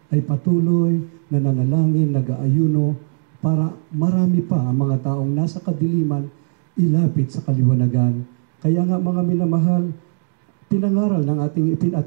ay patuloy na nanalangin, nag-aayuno para marami pa ang mga taong nasa kadiliman ilapit sa kaliwanagan. Kaya nga mga minamahal, pinangaral ng ating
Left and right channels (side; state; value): left; silent; digital silence